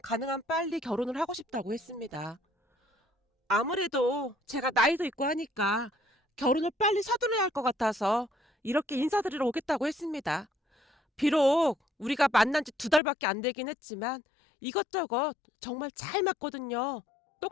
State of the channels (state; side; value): drops out; right; at 13.0 s